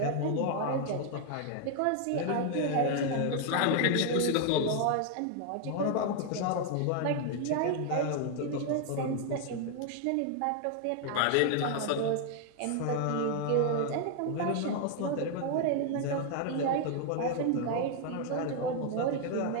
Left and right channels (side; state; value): both; different; correlation 0.00